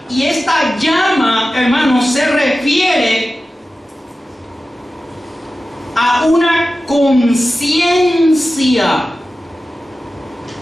Y esta llama, hermanos, se refiere a una conciencia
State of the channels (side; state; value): both; normal; correlation 0.94